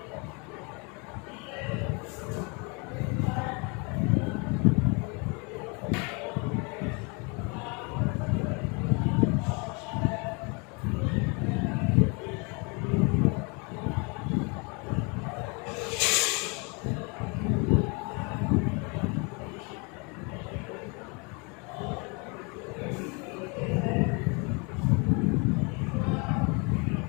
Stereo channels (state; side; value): quieter; right; 31.9 dB